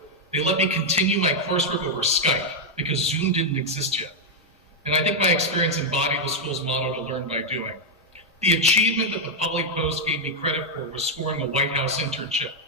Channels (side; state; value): both; normal; correlation 0.00